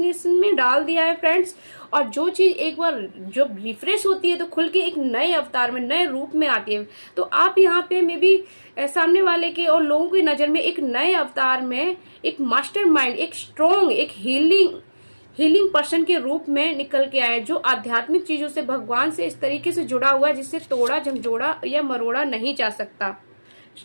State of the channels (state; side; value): inverted; both; correlation -1.00